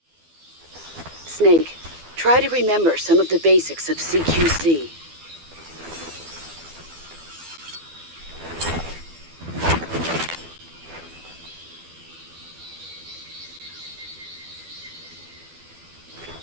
Snake, try to remember some of the basics of CQC.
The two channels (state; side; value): late; left; 12 ms